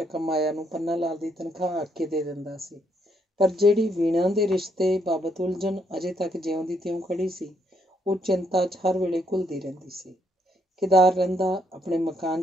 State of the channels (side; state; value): both; normal; correlation 0.73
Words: ਮਾਇਆ ਨੂੰ ਪੰਨਾ ਲਾਲ ਦੀ ਤਨਖਾਹ ਆਖ ਕੇ ਦੇ ਦਿੰਦਾ ਸੀ, ਪਰ ਜਿਹੜੀ ਵੀਣਾ ਦੇ ਰਿਸ਼ਤੇ ਬਾਬਤ ਉਲਝਣ ਅਜੇ ਤੱਕ ਜਿਉਂ ਦੀ ਤਿਉਂ ਖੜੀ ਸੀ, ਉਹ ਚਿੰਤਾ 'ਚ ਹਰ ਵੇਲੇ ਘੁਲਦੀ ਰਹਿੰਦੀ ਸੀ। ਕੇਦਾਰ ਰਹਿੰਦਾ ਆਪਣੇ ਮਕਾਨ